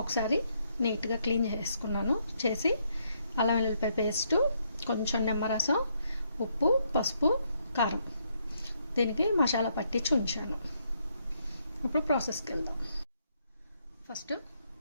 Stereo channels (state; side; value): inverted; both; correlation -0.74